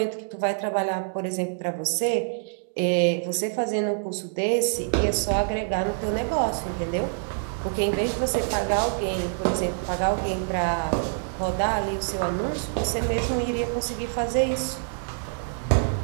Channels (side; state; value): left; silent; digital silence